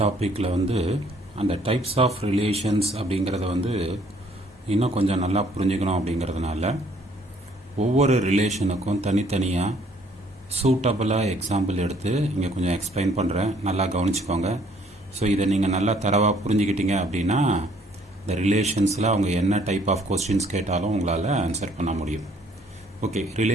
டாப்பிக்கில் வந்து அந்த டைப்ஸ் ஆஃப் ரிலேஷன்ஸ் அப்படிங்கிறத வந்து இன்னும் கொஞ்சம் நல்லா புரிஞ்சுக்கணும் அப்படிங்கிறதுனால ஒவ்வொரு ரிலேஷனுக்கும் தனித்தனியாக சூட்டபுளாக எக்ஸாம்பிள் எடுத்து இங்கே கொஞ்சம் எக்ஸ்பிளைன் பண்ணுறேன், நல்லா கவனிச்சுக்கோங்க. ஸோ இதை நீங்கள் நல்லா தரவாக புரிஞ்சுக்கிட்டீங்க அப்படின்னா இந்த ரிலேஷன்ஸில் அவங்க என்ன டைப் ஆஃப் கொஸ்டின்ஸ் கேட்டாலும் உங்களால் ஆன்சர் பண்ண முடியும். ஓகே,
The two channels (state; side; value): normal; both; correlation 0.62